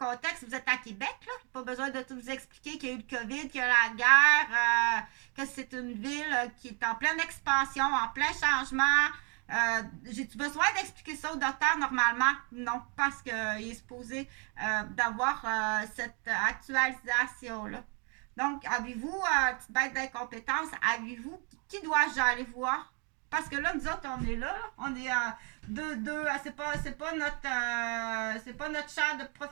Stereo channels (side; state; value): left; quieter; 35.4 dB